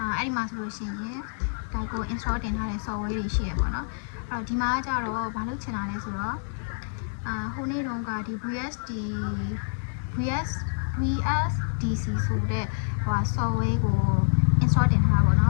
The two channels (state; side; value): silent; right; 60 dB below the other